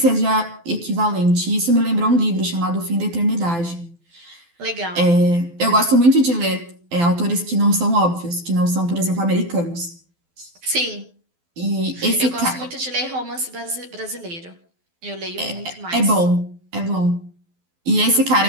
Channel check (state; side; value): late; left; 12 ms